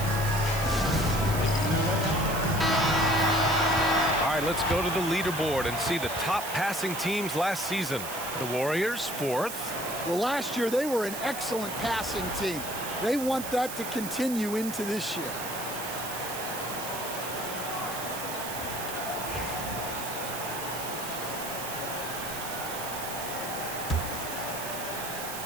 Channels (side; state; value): right; noise; hiss, 8 dB below the sound